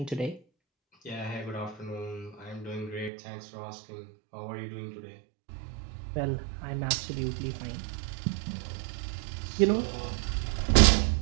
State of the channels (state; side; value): drops out; left; at 3.1 s